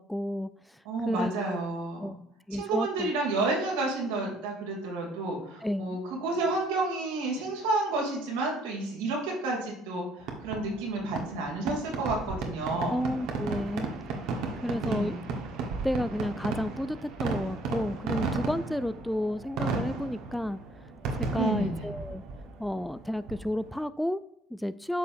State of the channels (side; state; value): both; normal; correlation 0.62